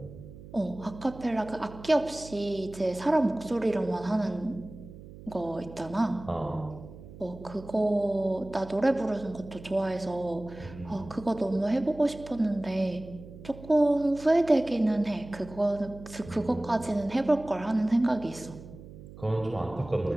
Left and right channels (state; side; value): noise; right; hum, 16 dB below the sound